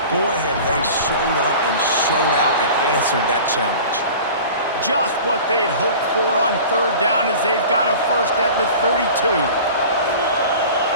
Boy, have they showed up and showed out and answered that challenge. Just what they'd hoped for on 3rd down as they've got a 1st at the 32.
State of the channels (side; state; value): both; inverted; correlation -0.40